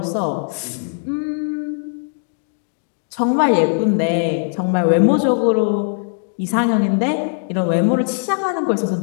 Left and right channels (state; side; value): silent; right; digital silence